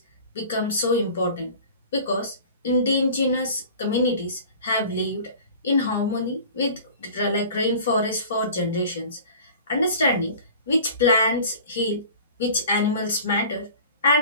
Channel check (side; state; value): both; inverted; correlation -0.43